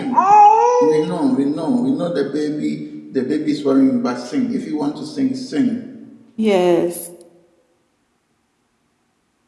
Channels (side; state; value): both; identical; correlation 1.00